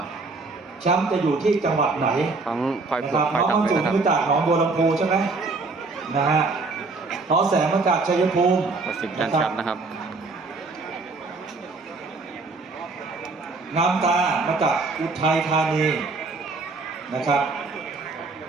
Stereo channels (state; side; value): quieter; left; 3.8 dB